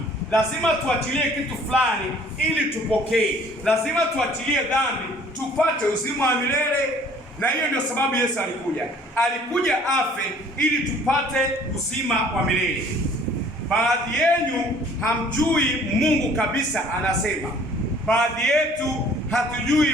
Lazima tuachilie kitu fulani ili tupokee. Lazima tuachilie dhambi tupate uzima wa milele. Na hiyo ndio sababu Yesu alikuja afe ili tupate uzima wa milele. Baadhi yenu hamjui Mungu kabisa, anasema. Baadhi yetu hatujui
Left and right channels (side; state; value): both; normal; correlation 0.54